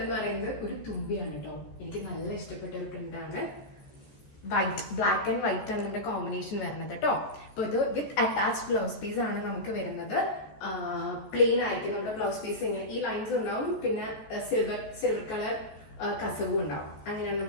എന്ന് പറയുന്നത് ഒരു തുമ്പിയാണ് കേട്ടോ. എനിക്ക് നല്ല ഇഷ്ടപ്പെട്ട ഒരു പ്രിന്റ് ആണ്. വൈറ്റ്, ബ്ലാക്ക് ആൻഡ് വൈറ്റ് ആണ് നമ്മുടെ കോമ്പിനേഷൻ വരുന്നത് കേട്ടോ. അപ്പൊ ഇത് വിത്ത് അറ്റാച്ച്ഡ് ബ്ലൗസ് പീസ് ആണ് നമുക്ക് വരുന്നത്. പ്ലെയിൻ ആയിരിക്കും നമ്മുടെ ബ്ലൗസ് പീസ്. ഇങ്ങനെ ഈ ലൈൻസ് ഉണ്ടാവും, പിന്നെ സിൽവർ കളർ കസവും ഉണ്ടാവും. അങ്ങനെയാണ്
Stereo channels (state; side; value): late; right; 14 ms